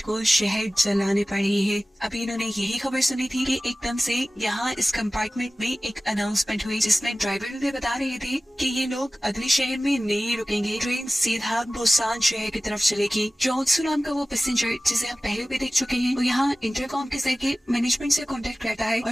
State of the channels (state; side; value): normal; both; correlation 0.96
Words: को शहर जलाने पड़ रही है। अभी इन्होंने यही खबर सुनी थी कि एकदम से यहाँ इस कंपार्टमेंट में एक अनाउंसमेंट हुई जिसमें ड्राइवर ने बता रहे थे कि ये लोग अगले शहर में नहीं रुकेंगे, ट्रेन सीधा बुसान शहर की तरफ चलेगी। जोंसू नाम का वो पैसेंजर जिसे हम पहले भी देख चुके हैं, वो यहाँ इंटरकॉम के जरिए मैनेजमेंट से कांटेक्ट करता है